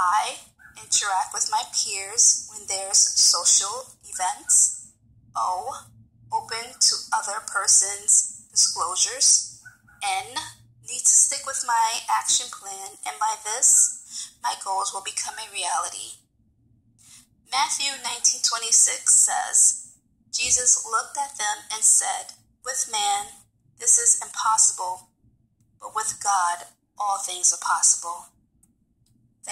Interact with my peers when there's social events. O. Open to other person's disclosures. N. Need to stick with my action plan, and by this, my goals will become a reality. Matthew 19:26 says, Jesus looked at them and said, with man, This is impossible, but with God, all things are possible.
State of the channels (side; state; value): both; identical; correlation 1.00